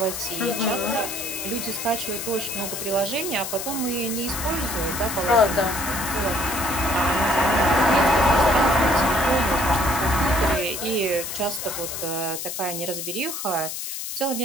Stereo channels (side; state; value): left; noise; hiss, 6 dB below the sound